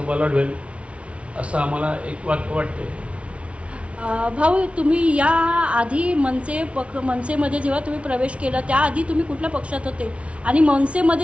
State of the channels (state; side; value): late; left; 0.061 ms